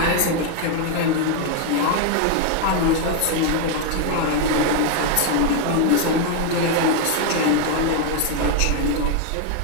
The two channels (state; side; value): different; both; correlation 0.01